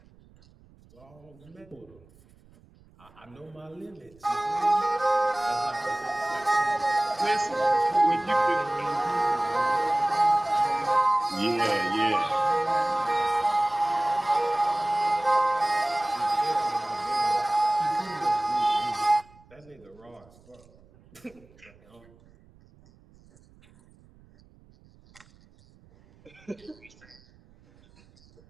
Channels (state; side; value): noise; right; rumble, 27 dB below the sound